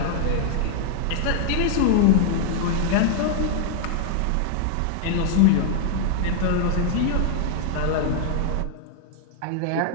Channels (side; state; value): both; different; correlation -0.01